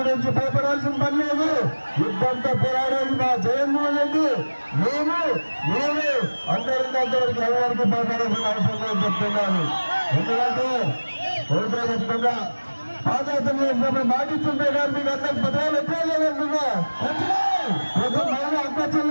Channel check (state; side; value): inverted; both; correlation -1.00